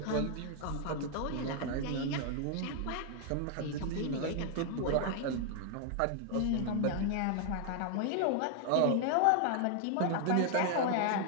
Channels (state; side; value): different; both; correlation 0.00